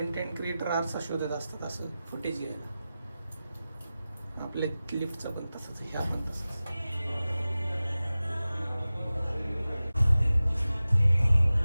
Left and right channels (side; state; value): both; inverted; correlation -0.96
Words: क्रिएटर आरसा शोधत असतात असं फुटेज घ्यायला. आपल्या लिफ्टचं पण तसंच, ह्या पण तसंच.